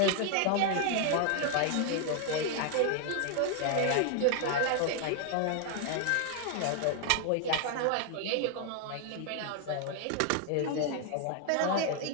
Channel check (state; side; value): different; both; correlation 0.00